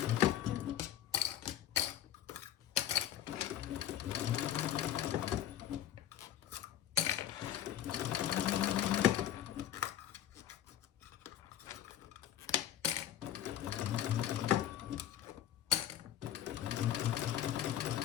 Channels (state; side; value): quieter; right; 11.5 dB